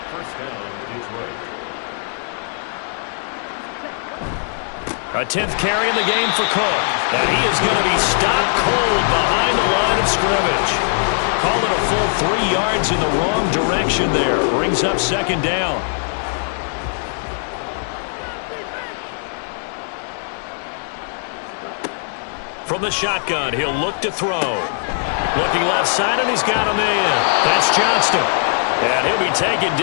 First down, Detroit. A 10th carry in the game for Cook. And he is going to be stopped cold behind the line of scrimmage. Call it a full 3 yards in the wrong direction there. Brings up 2nd down. From the shotgun, he'll look to throw. Looking left side, and he's got a man. That's Johnston. And he'll be taken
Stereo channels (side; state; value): right; silent; digital silence